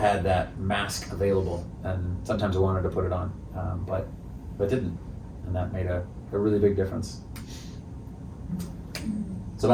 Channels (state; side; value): identical; both; correlation 1.00